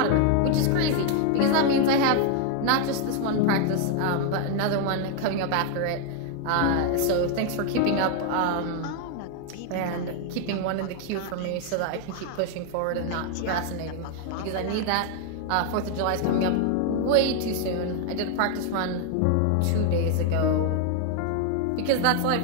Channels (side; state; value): both; different; correlation 0.00